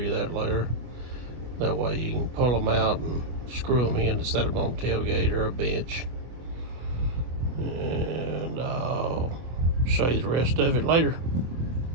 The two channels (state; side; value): late; left; 25 ms